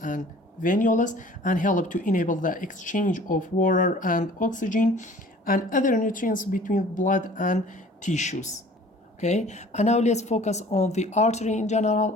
and venules, and help to enable the exchange of water and oxygen and other nutrients between blood and tissues. Okay, and now let's focus on the artery in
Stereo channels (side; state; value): both; normal; correlation 0.49